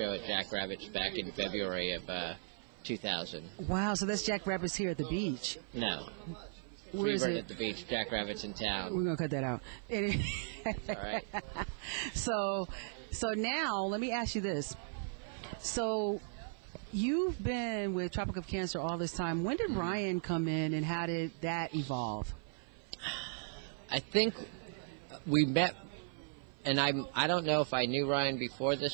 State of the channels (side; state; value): left; silent; 53 dB below the other